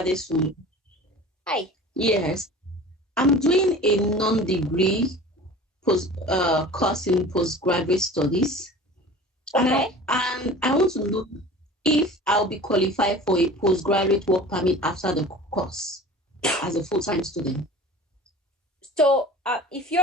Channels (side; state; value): both; normal; correlation 0.39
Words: Hi. Yes. I'm doing a non-degree course in postgraduate studies. Okay. And I want to know if I'll be qualified for a postgraduate work permit after the course as a full-time student. So if